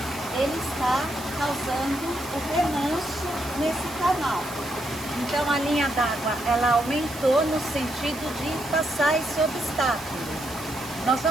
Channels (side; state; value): right; noise; hiss, 16 dB below the sound